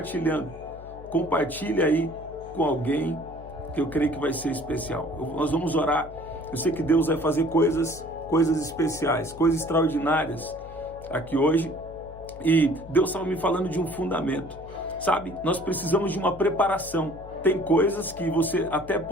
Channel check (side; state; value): left; noise; hum, 16 dB below the sound